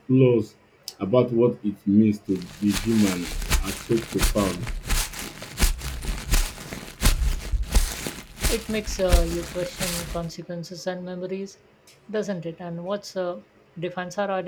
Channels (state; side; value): identical; both; correlation 1.00